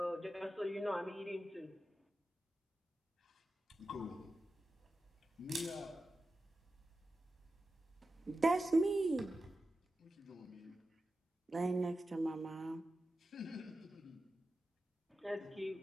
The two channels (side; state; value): both; normal; correlation 0.92